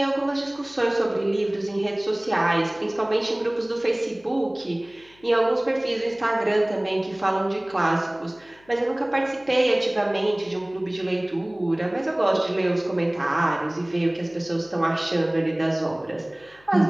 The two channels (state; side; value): noise; left; hum, 29 dB below the sound